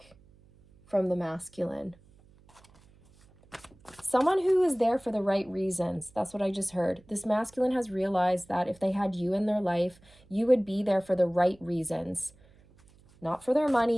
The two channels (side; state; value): right; noise; hum, 28 dB below the sound